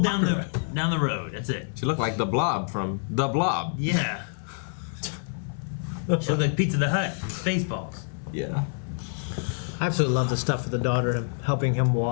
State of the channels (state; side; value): silent; right; 58 dB below the other